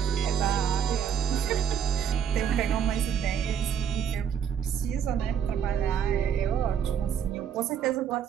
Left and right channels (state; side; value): quieter; left; 8.0 dB